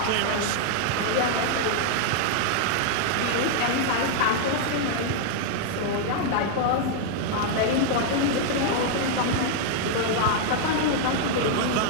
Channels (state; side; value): different; both; correlation 0.00